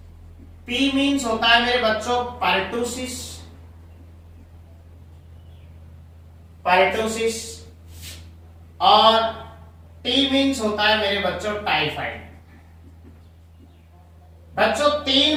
P मीन्स होता है मेरे बच्चों पर्टुसिस, पर्टुसिस, और T मीन्स होता है मेरे बच्चों टाइफाइड। बच्चों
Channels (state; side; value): identical; both; correlation 1.00